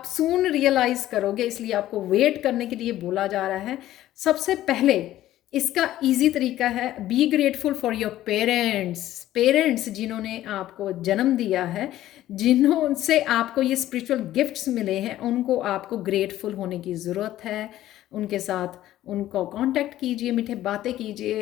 सून रियलाइज़ करोगे, इसलिए आपको वेट करने के लिए बोला जा रहा है। सबसे पहले इसका इजी तरीका है, be grateful for your parents. Parents जिन्होंने आपको जन्म दिया है, जिन्हों से आपको ये स्पिरिचुअल गिफ्ट्स मिले हैं, उनको आपको ग्रेटफुल होने की ज़रूरत है। उनके साथ उनको कांटेक्ट कीजिए, मीठे बातें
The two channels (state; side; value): quieter; right; 13.9 dB